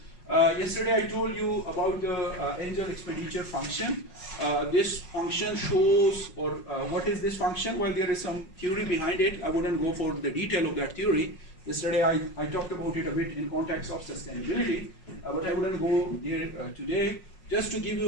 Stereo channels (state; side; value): late; right; 5.5 ms